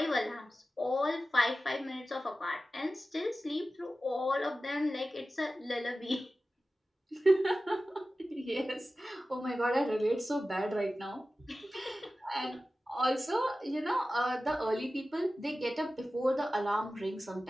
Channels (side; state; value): both; normal; correlation 0.95